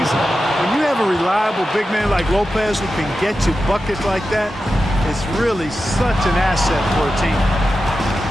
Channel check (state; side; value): normal; both; correlation 0.91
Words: When you have a reliable big man like Lopez who can get you buckets like that, it's really such an asset for a team.